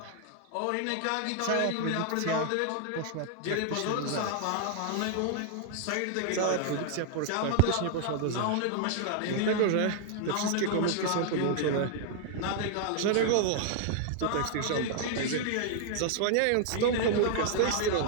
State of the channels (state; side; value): different; both; correlation 0.00